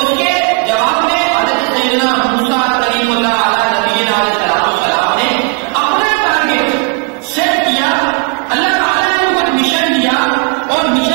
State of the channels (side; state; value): left; quieter; 34.5 dB